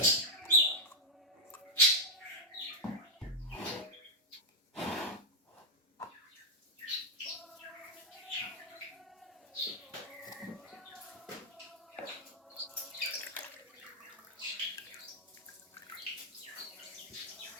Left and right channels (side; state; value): both; normal; correlation -0.03